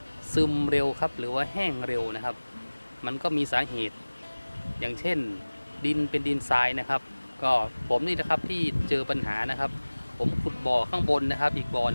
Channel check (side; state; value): both; inverted; correlation -1.00